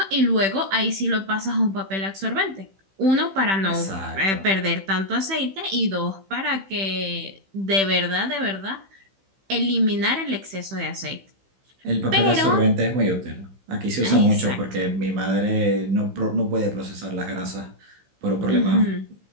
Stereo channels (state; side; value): late; left; 15 ms